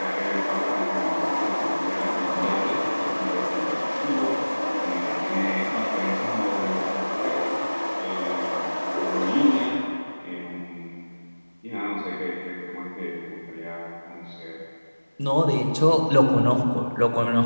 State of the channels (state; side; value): inverted; both; correlation -1.00